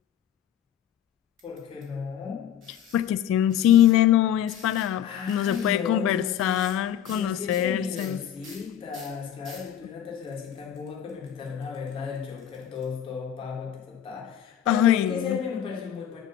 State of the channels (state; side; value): quieter; right; 10.5 dB